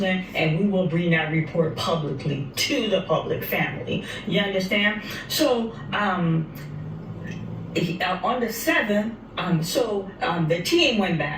and we will bring that report publicly to the public family. You understand? So, on the 7th, the team went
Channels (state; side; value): identical; both; correlation 1.00